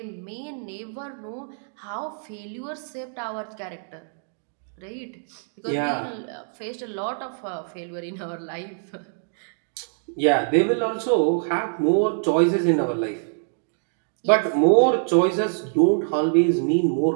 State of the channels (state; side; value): silent; left; digital silence